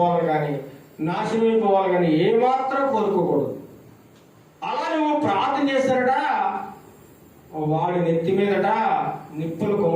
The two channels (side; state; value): both; identical; correlation 1.00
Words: కానీ నాశనమైపోవాలి కానీ ఏమాత్రం కోరుకోకూడదు. అలా నువ్వు ప్రార్థన చేశారట, వాడి నెత్తి మీదట నిప్పులు